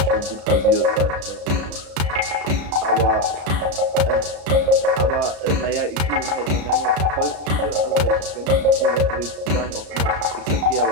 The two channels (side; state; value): left; late; 34 ms